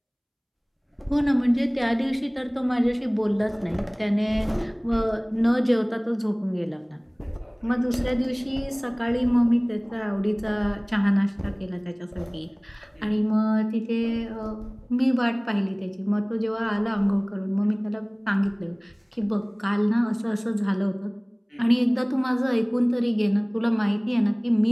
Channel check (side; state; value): both; identical; correlation 1.00